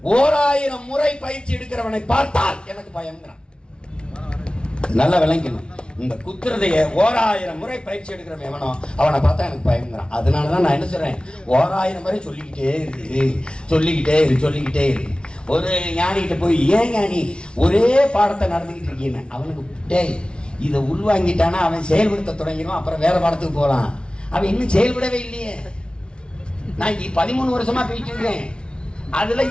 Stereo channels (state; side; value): late; right; 0.056 ms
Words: 1000 முறை பயிற்சி எடுக்கிறவனை பார்த்தால் எனக்கு பயம்ங்கிறான். நல்லா விளங்கணும். இந்த குத்துறதைய 1000 முறை பயிற்சி எடுக்கிறவன் எவனோ அவனை பார்த்தா எனக்கு பயம்ங்கிறான். அதனாலதான் நான் என்ன சொல்றேன், 1000 முறை சொல்லிக்கிட்டே இருக்கு, சொல்லிக்கிட்டே இரு, சொல்லிக்கிட்டே இரு. ஒரு ஞானிகிட்ட போய், ஏன் ஞானி ஒரே பாடத்தை நடந்துக்கிட்டு இருக்கீங்க? அவனுக்கு டேய் இதை உள்வாங்கிட்டானா அவன் செயல்படுத்த தொடங்கிடுவான். அப்புறம் வேற பாடத்துக்கு போகலாம். அவன் இன்னும் செயல்படவே இல்லையே. நான் 13 வருஷமா போயிட்டு இருக்கேன். அதுல